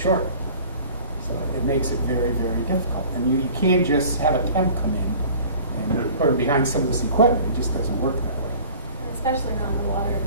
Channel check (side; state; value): both; inverted; correlation -0.46